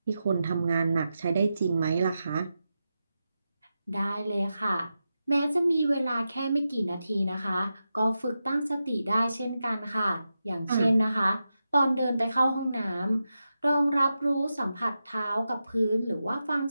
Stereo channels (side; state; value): both; inverted; correlation -0.90